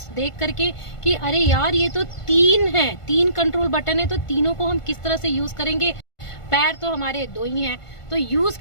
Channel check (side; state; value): right; late; 1.5 ms